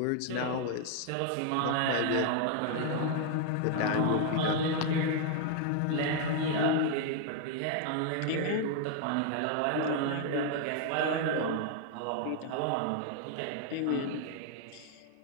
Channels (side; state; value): both; different; correlation 0.00